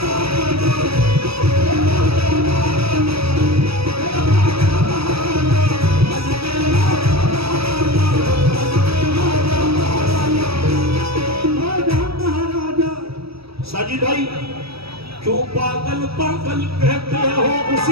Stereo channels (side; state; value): left; late; 0.77 ms